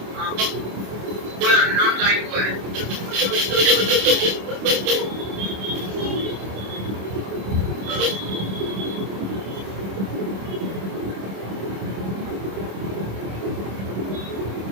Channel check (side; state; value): left; late; 26 ms